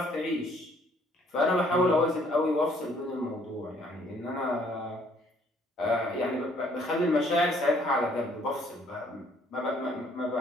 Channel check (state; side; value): normal; both; correlation 0.63